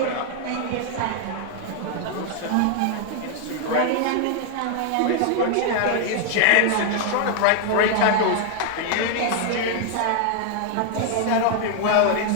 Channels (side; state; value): both; different; correlation 0.00